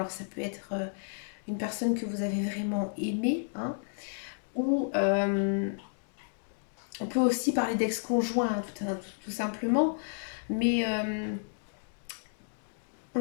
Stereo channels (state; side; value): silent; right; digital silence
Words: ça peut être une personne que vous avez vraiment aimée, hein, ou on peut aussi parler d'ex-conjoint, hein, tout simplement, mais